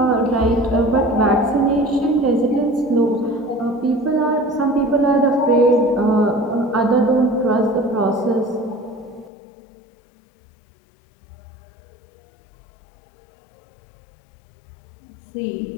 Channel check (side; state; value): right; drops out; at 9.3 s